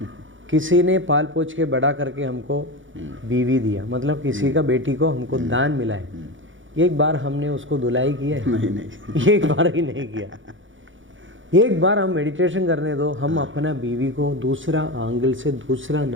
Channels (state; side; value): late; left; 0.56 ms